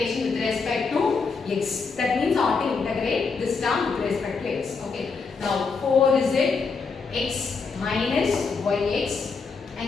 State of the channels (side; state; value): right; quieter; 4.8 dB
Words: with respect to x. That means I want to integrate this term with respect to x. Okay. Now 4 is it x minus yx